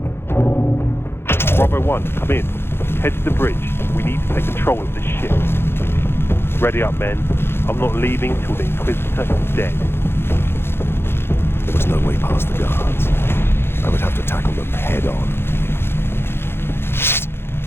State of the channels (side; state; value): right; late; 0.11 ms